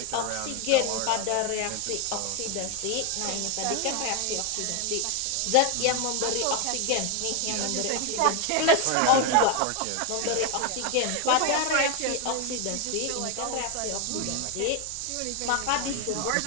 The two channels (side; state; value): both; different; correlation 0.01